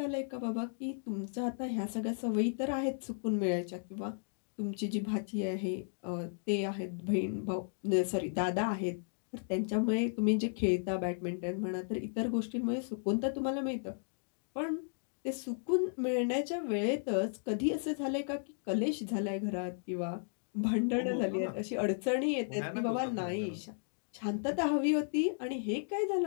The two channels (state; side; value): silent; right; digital silence